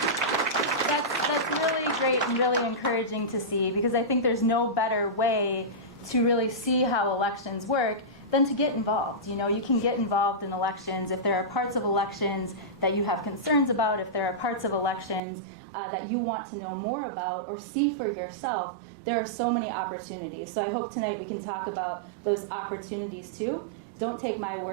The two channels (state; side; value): drops out; left; at 15.2 s